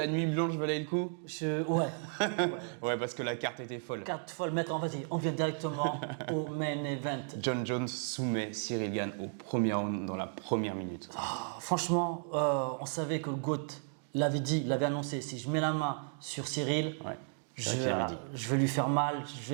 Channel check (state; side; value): silent; left; 55 dB below the other